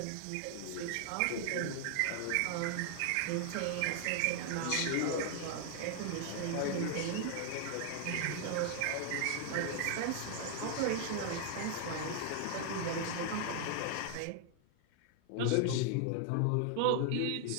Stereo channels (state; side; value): different; both; correlation 0.00